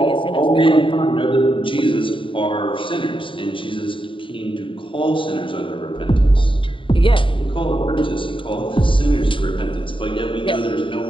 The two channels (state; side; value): late; right; 0.25 ms